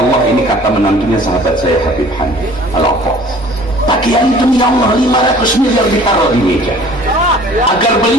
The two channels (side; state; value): both; normal; correlation 0.50